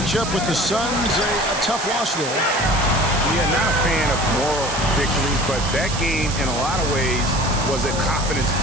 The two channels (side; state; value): right; noise; hiss, 7 dB below the sound